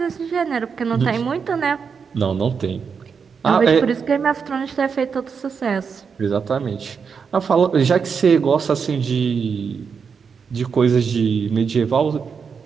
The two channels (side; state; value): left; quieter; 6.0 dB